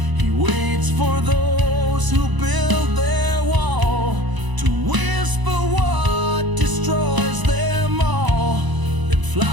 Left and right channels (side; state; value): left; late; 1.0 ms